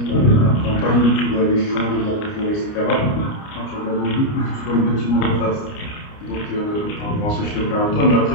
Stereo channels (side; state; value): right; late; 29 ms